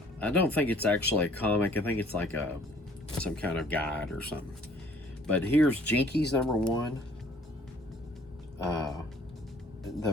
don't think it's actually a comic. I think it's like some kind of guide or something. But here's Jinkies number 1.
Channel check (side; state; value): both; normal; correlation 0.57